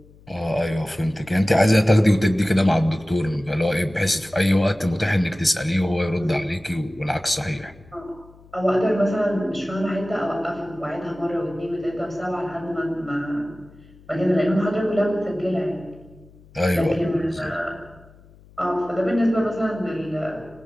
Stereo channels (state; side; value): noise; left; hum, 25 dB below the sound